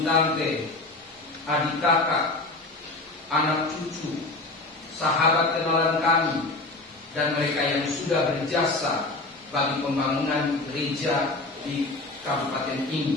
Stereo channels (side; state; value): right; quieter; 3.1 dB